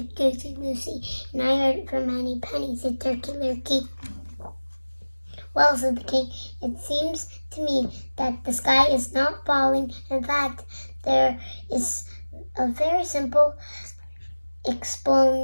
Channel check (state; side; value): inverted; both; correlation -1.00